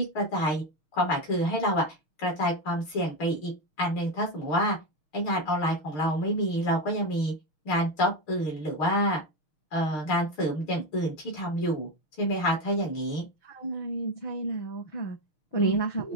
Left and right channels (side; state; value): right; late; 6.4 ms